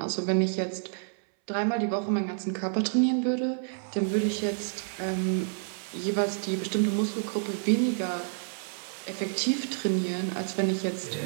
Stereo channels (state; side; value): silent; left; 59 dB below the other